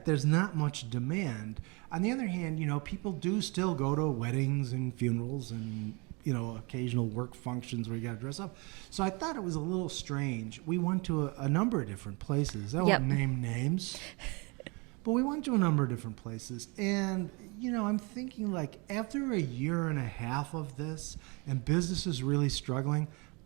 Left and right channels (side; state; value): left; quieter; 29.3 dB